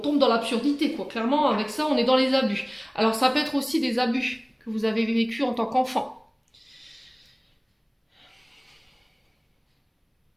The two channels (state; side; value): identical; both; correlation 1.00